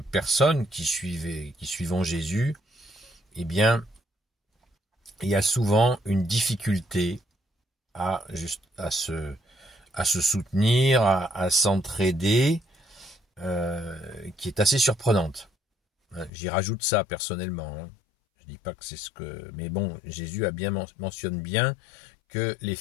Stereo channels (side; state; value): right; drops out; at 16.3 s